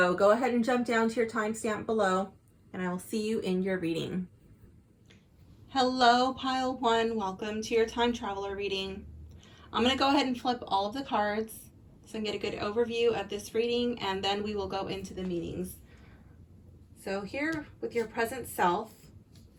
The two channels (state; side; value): identical; both; correlation 1.00